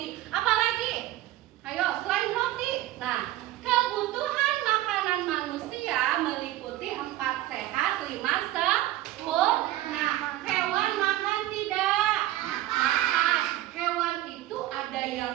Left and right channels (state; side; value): quieter; left; 15.1 dB